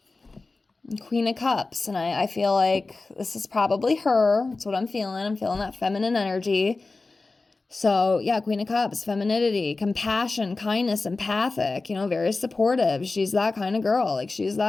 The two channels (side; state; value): right; quieter; 3.6 dB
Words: Queen of Cups. And I feel like this is probably her. That's what I'm feeling. I'm feeling that feminine energy. So yeah, Queen of Cups, femininity, compassion, kindness, empathic, very supportive. She's that kind of girl. Like, she's